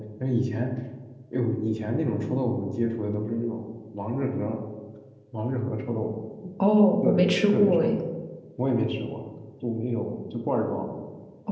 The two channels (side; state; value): both; identical; correlation 1.00